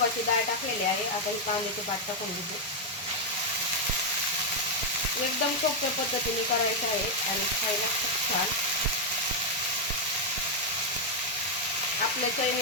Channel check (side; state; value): both; normal; correlation 0.00